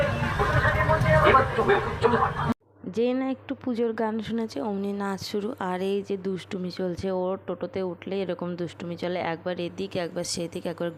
যে না একটু পুজোর গান শুনেছে অমনি নাচ শুরু। আর এই যে দুষ্টুমি চলছে, ওর টোটোতে উঠলে এরকম দুষ্টুমি চলে, একবার এদিক একবার সেদিক, একবার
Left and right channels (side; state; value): both; identical; correlation 1.00